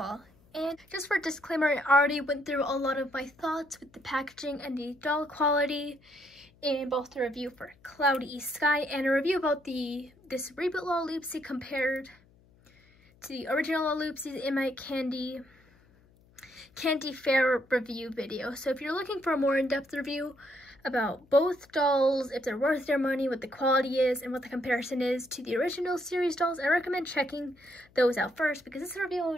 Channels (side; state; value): left; noise; hum, 30 dB below the sound